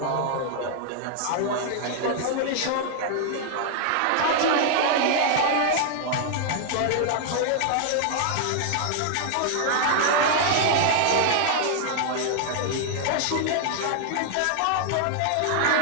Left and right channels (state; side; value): different; both; correlation 0.00